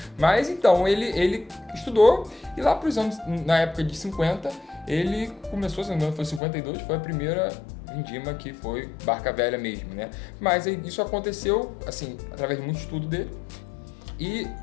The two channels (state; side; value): drops out; right; at 6.4 s